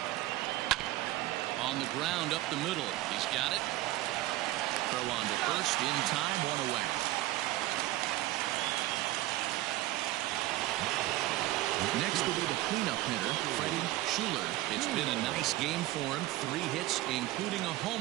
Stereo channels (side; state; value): left; quieter; 16.8 dB